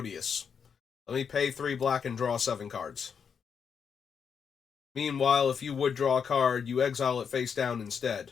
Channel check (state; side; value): quieter; right; 6.7 dB